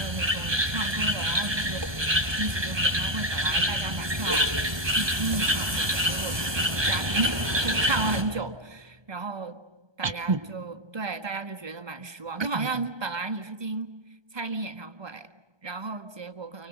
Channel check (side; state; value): left; late; 1.2 ms